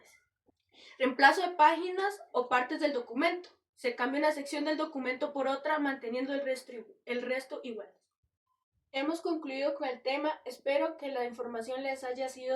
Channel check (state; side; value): identical; both; correlation 1.00